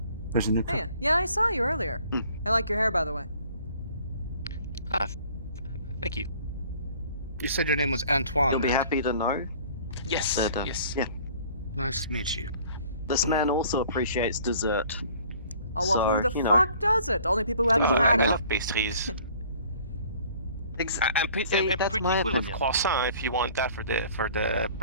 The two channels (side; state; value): both; inverted; correlation -0.53